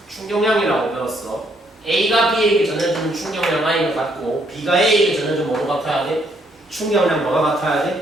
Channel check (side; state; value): both; normal; correlation 0.70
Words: 충격량이라고 배웠어. A가 B에게 전해주는 충격량 I가 같고 B가 A에게 전해주는 뭐가 같아야 돼? 충격량 뭐가 같아야